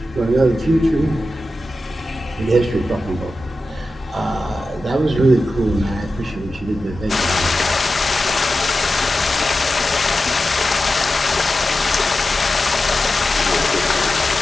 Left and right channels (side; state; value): both; normal; correlation 0.92